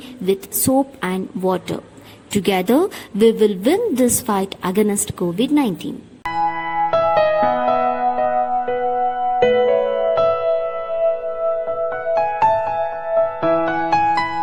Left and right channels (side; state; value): both; identical; correlation 1.00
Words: with soap and water. Together, we will win this fight against COVID-19.